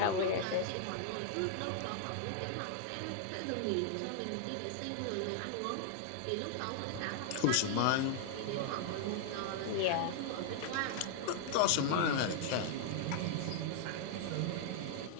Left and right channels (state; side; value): different; both; correlation -0.01